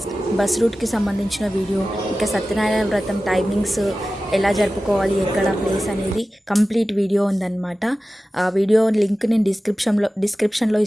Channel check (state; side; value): normal; both; correlation 0.95